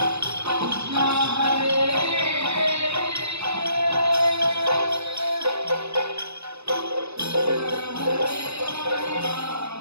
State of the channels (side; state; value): left; late; 0.79 ms